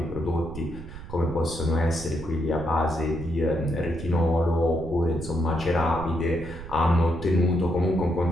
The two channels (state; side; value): noise; right; rumble, 12 dB below the sound